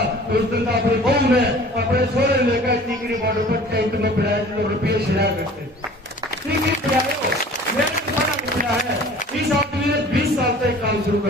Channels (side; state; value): both; normal; correlation 0.46